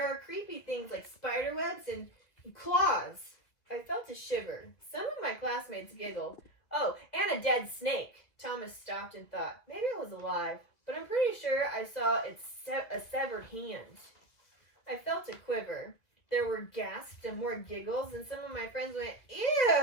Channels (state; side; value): late; right; 2.0 ms